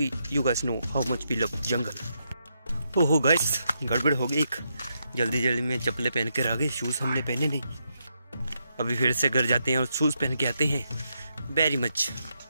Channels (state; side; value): inverted; both; correlation -0.81